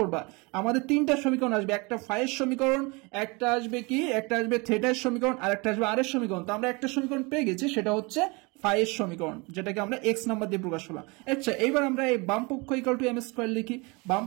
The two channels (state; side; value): quieter; left; 27.5 dB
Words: আমাদের তিনটা সমীকরণ আসবে, একটা ফাইয়ের সমীকরণ, একটা আসবে কি, একটা আসবে থিটার সমীকরণ, আর একটা আসবে আর এর সমীকরণ। তো আমরা একটা সমীকরণ পেয়ে গেছি, সেটা হচ্ছে ফাইয়ের সমীকরণ, যেটাকে আমরা এক্স নাম্বার দিয়ে প্রকাশ করলাম। আচ্ছা, এইবার আমরা এই বাম পক্ষ ইকুয়াল টু এম স্কয়ার লিখি। বাম